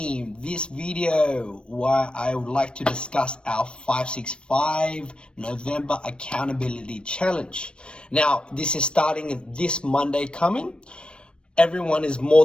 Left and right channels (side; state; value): right; late; 0.057 ms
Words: This video where I would like to discuss our 565 November accountability challenge. Now, this is starting this Monday coming. Everyone is more